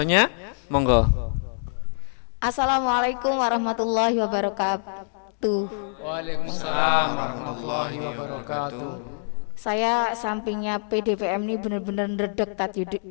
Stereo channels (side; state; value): right; silent; digital silence